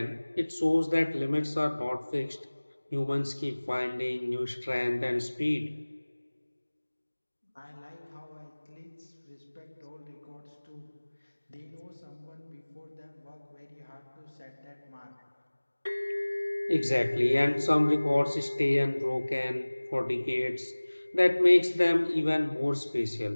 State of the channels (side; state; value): both; inverted; correlation -1.00